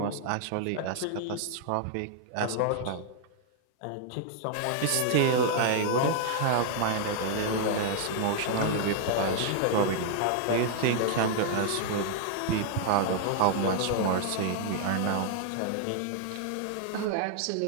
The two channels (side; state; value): both; different; correlation -0.01